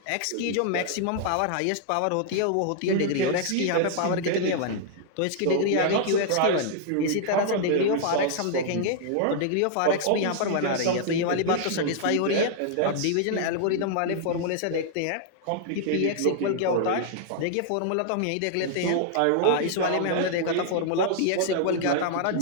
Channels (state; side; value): different; both; correlation -0.01